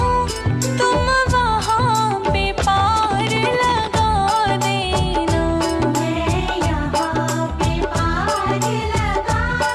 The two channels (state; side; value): identical; both; correlation 1.00